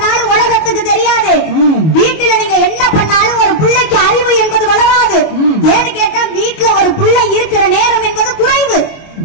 உலகத்துக்கு தெரியாது. வீட்டுல நீங்க என்ன பண்ணாலும் ஒரு பிள்ளைக்கு அறிவு என்பது வளராது. ஏன்னு கேட்டா வீட்டுல ஒரு பிள்ளை இருக்கிற நேரம் என்பது குறைவு.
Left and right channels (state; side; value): late; right; 25 ms